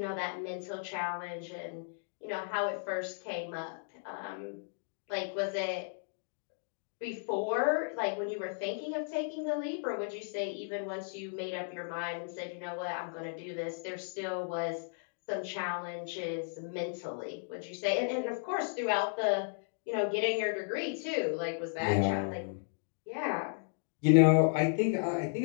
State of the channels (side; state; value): right; silent; digital silence